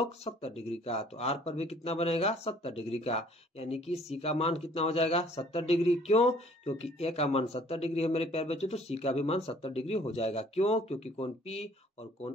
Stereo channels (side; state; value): both; normal; correlation 0.56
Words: 70 डिग्री का। तो आर पर भी कितना बनेगा, 70 डिग्री का। यानी कि सी का मान कितना हो जाएगा, 70 डिग्री। क्यों, क्योंकि ए का मान 70 डिग्री है मेरे प्यारे बच्चों, तो सी का भी मान 70 डिग्री हो जाएगा। क्यों, क्योंकि कोण पी और